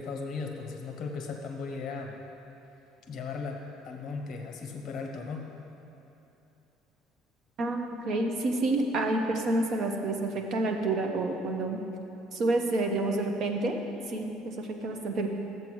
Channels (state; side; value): normal; both; correlation 0.61